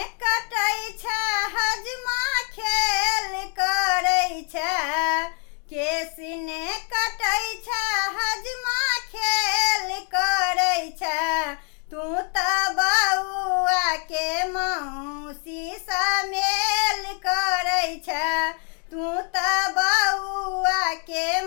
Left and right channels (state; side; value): quieter; right; 38.6 dB